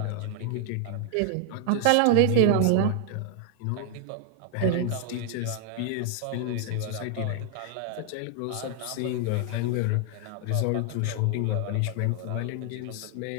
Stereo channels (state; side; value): different; both; correlation 0.00